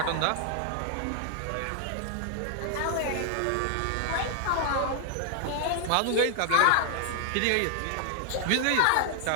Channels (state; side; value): different; both; correlation 0.00